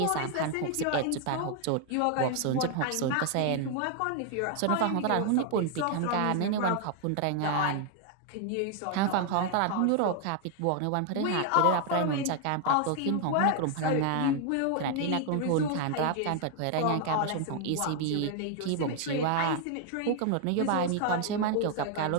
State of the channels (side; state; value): both; different; correlation 0.00